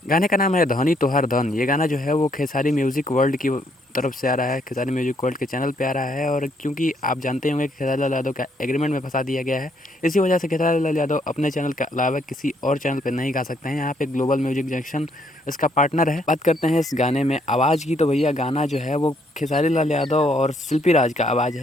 गाने का नाम है धनी तोहर धन। ये गाना जो है वो खेसारी म्यूज़िक वर्ल्ड की तरफ से आ रहा है, खेसारी म्यूज़िक वर्ल्ड के चैनल पे आ रहा है। और क्योंकि आप जानते होंगे कि खेसारी लाल यादव का एग्रीमेंट में फँसा दिया गया है, इसी वजह से खेसारी लाल यादव अपने चैनल के अलावा किसी और चैनल पे नहीं गा सकते हैं। यहाँ पे ग्लोबल म्यूजिक जंक्शन इसका पार्टनर है। बात करते हैं इस गाने में आवाज़ की, तो भैया गाना जो है वो खेसारी लाल यादव और शिल्पी राज का आवाज़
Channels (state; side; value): normal; both; correlation 0.70